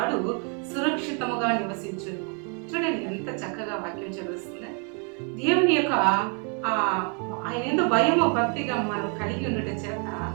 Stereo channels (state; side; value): quieter; left; 38.1 dB